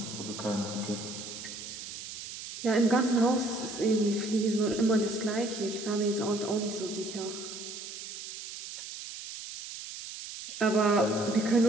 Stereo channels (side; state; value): right; noise; hiss, 10 dB below the sound